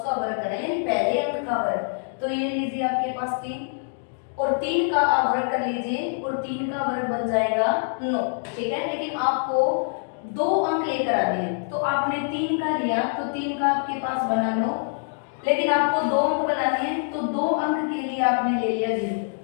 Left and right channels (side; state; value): right; silent; digital silence